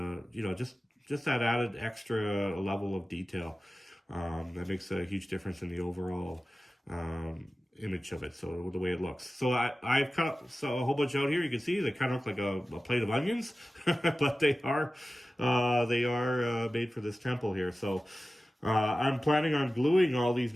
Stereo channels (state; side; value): normal; both; correlation 0.95